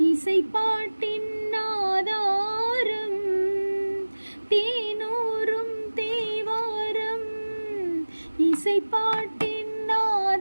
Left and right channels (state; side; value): inverted; both; correlation -1.00